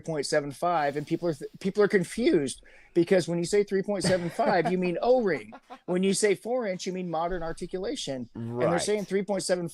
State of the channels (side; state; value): both; identical; correlation 1.00